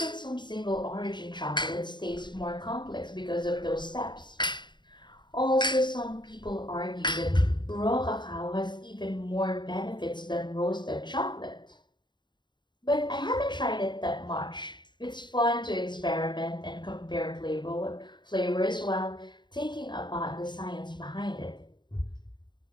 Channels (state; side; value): late; right; 0.22 ms